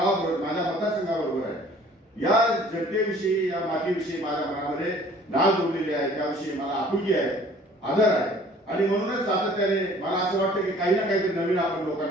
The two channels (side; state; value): both; normal; correlation 0.53